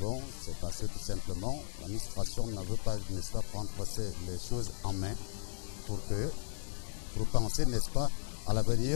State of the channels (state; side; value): silent; right; digital silence